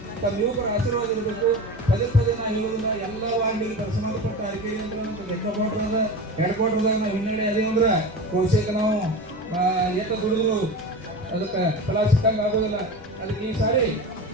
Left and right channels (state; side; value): normal; both; correlation 0.29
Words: ತಮ್ಮ ಯುವಕರ ಆಶೀರ್ವಾದ ಇರಬೇಕು. ಪದೇ ನಾವು ಹೇಳೋದಿಲ್ಲ, ಎಲ್ಲ ವಾರ್ಡಿಗೆ ಸಂಬಂಧಪಟ್ಟ ಅರಿಕೆರೆ ಅಂತ ಲೆಕ್ಕಪಟ್ರದ ಹೆಡ್ಕ್ವಾರ್ಟರ್ದಾಗ ನಾವು ಹಿನ್ನಡೆ ಅದೇ ಅಂದ್ರೆ ಕೋಶಕ್ಕೆ ನಾವು ಏಕ ದುಡಿದ್ರು ಅದಕ್ಕೆ ಫಲ ಸಿಕ್ಕಂಗೆ ಆಗೋದಿಲ್ಲ. ಅದಕ್ಕೆ ಈ ಸಾರಿ